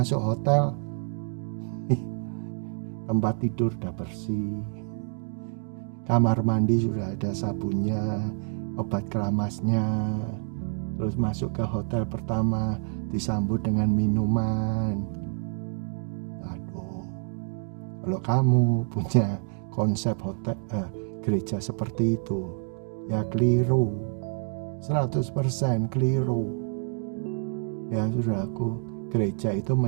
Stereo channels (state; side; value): silent; left; 58 dB below the other